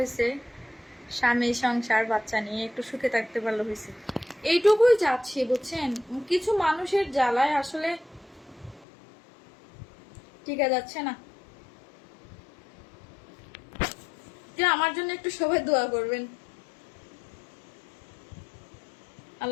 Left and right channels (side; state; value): right; drops out; at 8.8 s